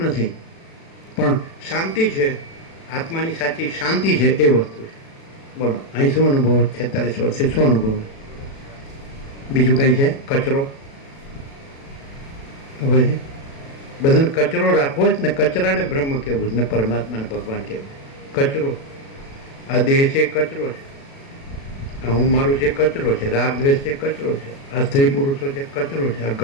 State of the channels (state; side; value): late; right; 36 ms